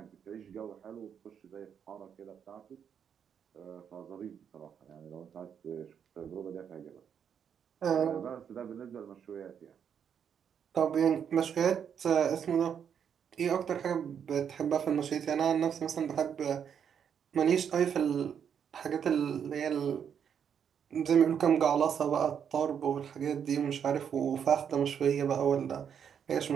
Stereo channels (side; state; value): left; quieter; 7.9 dB